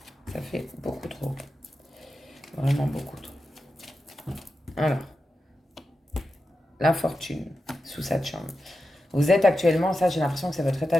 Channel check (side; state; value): both; normal; correlation 0.91